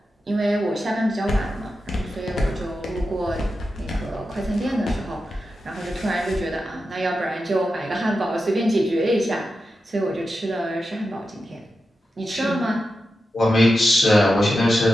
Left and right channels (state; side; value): normal; both; correlation 0.90